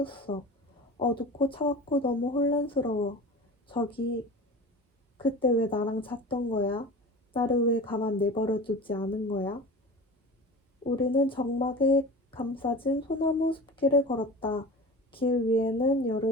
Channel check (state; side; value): normal; both; correlation 0.34